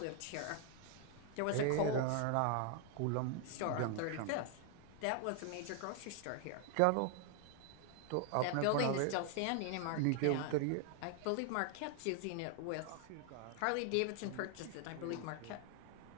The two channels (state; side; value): different; both; correlation 0.00